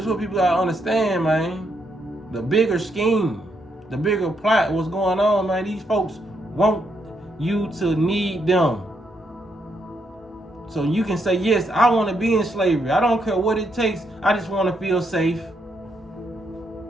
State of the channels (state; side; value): normal; both; correlation 0.77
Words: is what people gotta understand, man. The bigger scheme, the bigger plot, what's going on, man. These folks want you to need them. So you can say, yes, I want to be in slavery. I don't care what it takes. I just want to feel safe.